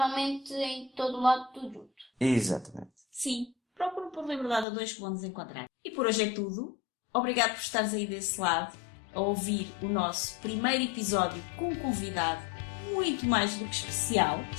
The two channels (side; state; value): right; drops out; at 4.7 s